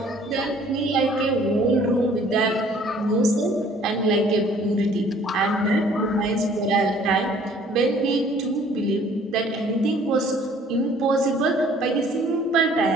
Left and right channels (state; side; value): normal; both; correlation 0.56